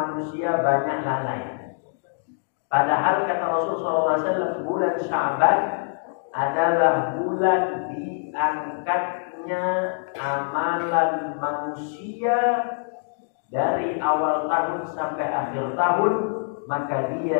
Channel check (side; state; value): right; silent; digital silence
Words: banyak lalai. Padahal kata Rasulullah SAW, bulan Sya'ban adalah bulan diangkatnya amalan manusia dari awal tahun sampai akhir tahun, maka